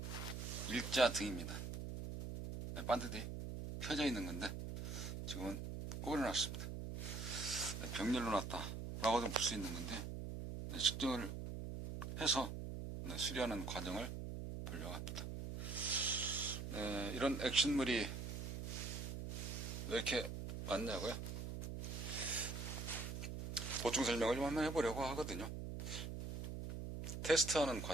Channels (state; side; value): noise; right; hum, 5 dB below the sound